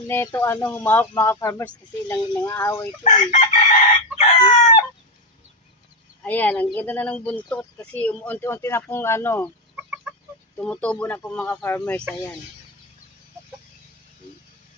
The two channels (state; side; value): normal; both; correlation 0.09